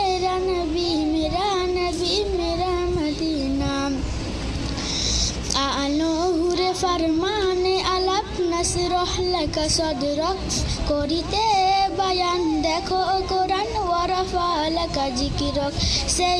নবী মেরা মদিনা আলোহুরে ফরমানে আলাপ নসরহ লাকা সদরক করিতে বায়ান দেখো কোরআন ওয়ারাফা লাকা জিকিরক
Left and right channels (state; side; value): identical; both; correlation 1.00